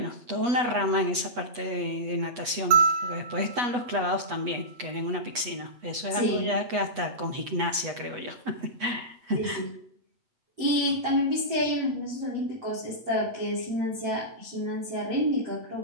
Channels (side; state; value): left; late; 8.2 ms